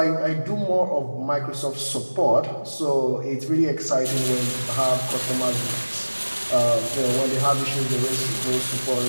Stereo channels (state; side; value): inverted; both; correlation -1.00